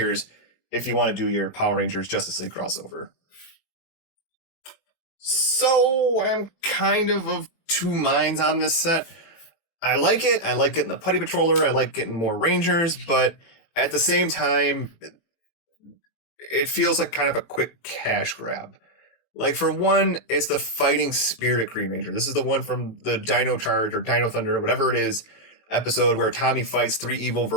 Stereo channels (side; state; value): right; late; 18 ms